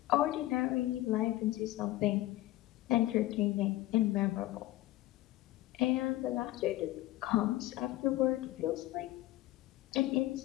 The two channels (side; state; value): right; quieter; 16.4 dB